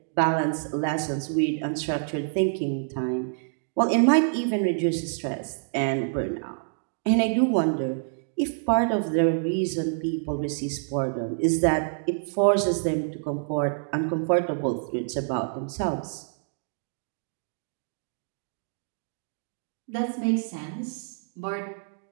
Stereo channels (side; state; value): left; silent; digital silence